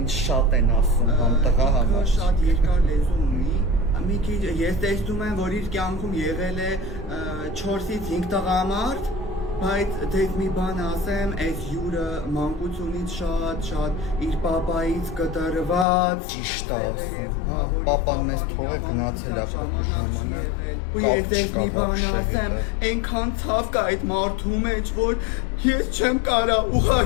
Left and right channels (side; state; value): right; drops out; at 15.9 s